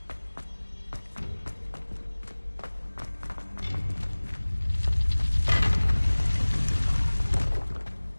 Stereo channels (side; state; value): both; inverted; correlation -1.00